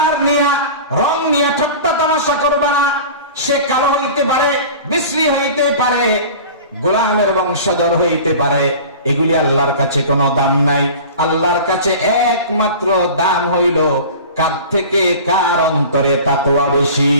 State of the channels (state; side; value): inverted; both; correlation -0.38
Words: নিয়ে, রং নিয়ে ঠাট্টা তামাশা করবা না। সে কালো হইতে পারে, বিশ্রী হইতে পারে, গোলামের বংশধর হইতে পারে, এগুলি আল্লাহর কাছে কোনো দাম নাই। আল্লাহর কাছে একমাত্র দাম হইল কার থেকে কার অন্তরে তাকওয়া বেশি।